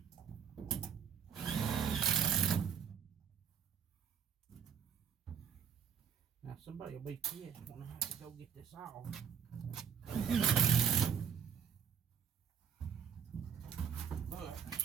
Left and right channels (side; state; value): left; quieter; 7.6 dB